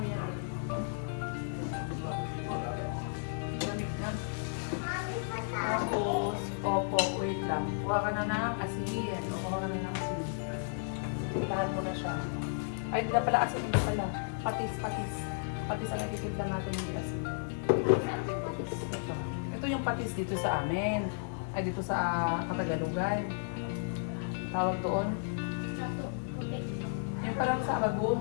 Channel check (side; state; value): right; silent; digital silence